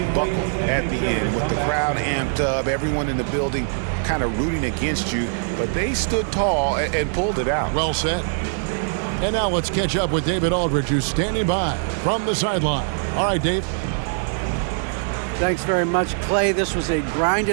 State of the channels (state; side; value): silent; left; digital silence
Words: buckled at the end with the crowd amped up, everyone in the building kind of rooting against you, but they stood tall and pulled it out. Well said. And now let's catch up with David Aldridge, who's standing by from the sideline. All right, Dave. Thanks very much, Clay. This was a